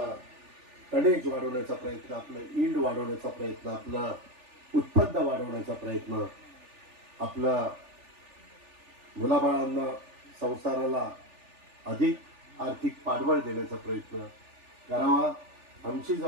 टनेज वाढवण्याचा प्रयत्न, आपलं ईल्ड वाढवण्याचा प्रयत्न, आपलं उत्पन्न वाढवण्याचा प्रयत्न, आपला मुलाबाळांना संसाराला अधिक आर्थिक पाठबळ देण्याचा प्रयत्न करावा. आमची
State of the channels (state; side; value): late; left; 3.4 ms